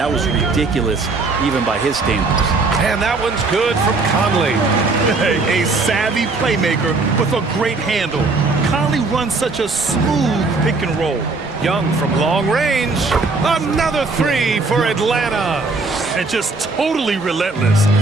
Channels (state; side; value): quieter; left; 3.7 dB